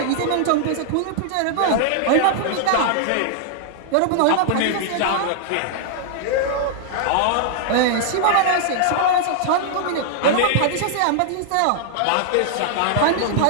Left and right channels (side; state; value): both; different; correlation -0.01